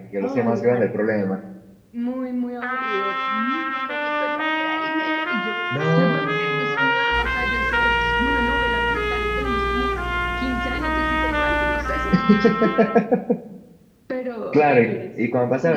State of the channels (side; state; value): both; identical; correlation 1.00